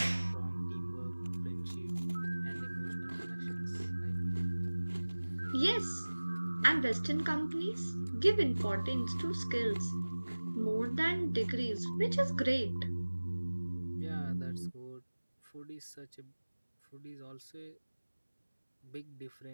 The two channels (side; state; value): both; inverted; correlation -1.00